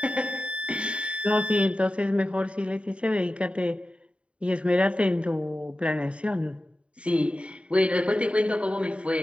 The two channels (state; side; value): late; left; 0.061 ms